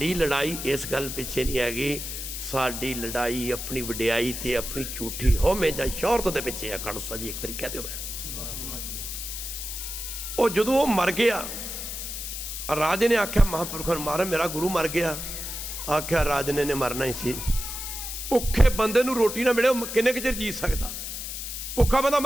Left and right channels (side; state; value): left; noise; hiss, 6 dB below the sound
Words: ਲੜਾਈ ਇਸ ਗੱਲ ਪਿੱਛੇ ਨਹੀਂ ਹੈਗੀ। ਸਾਡੀ ਲੜਾਈ ਆਪਣੀ ਵਡਿਆਈ ਤੇ ਆਪਣੀ ਝੂਠੀ ਹਉਮੈ ਜਾਂ ਸ਼ੌਹਰਤ ਦੇ ਪਿੱਛੇ ਆ। ਖਾਲਸਾ ਜੀ ਇੱਕ ਵਾਰੀ ਕਹਿ ਦਿਓ। ਉਹ ਜਦੋਂ ਉਹ ਮਰ ਗਿਆ, ਰਾਜੇ ਨੇ ਆਖਿਆ ਮਹਾਂਪੁਰਖਾਂ ਨੂੰ, ਮਾਰਾ ਮੇਰਾ ਗੁਰੂ ਮਰ ਗਿਆ। ਆਖਿਆ ਰਾਜੇ ਨੇ ਮਰਨਾ ਹੀ ਸੀ। ਭੁੱਖੇ ਬੰਦੇ ਨੂੰ ਰੋਟੀ ਨਾ ਮਿਲੇ ਉਹ ਕਿੰਨੇ ਕੁ ਚਿਰ ਜੀ ਸਕਦਾ? ਭੁੱਖਾ ਬੰਦਾ